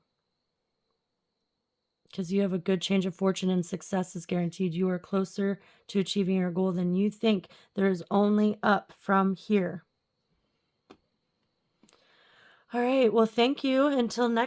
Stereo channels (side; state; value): both; identical; correlation 1.00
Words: Because you have a good change of fortune and success is guaranteed. You are closer to achieving your goal than you think. There is only up from here. All right. Well, thank you. Until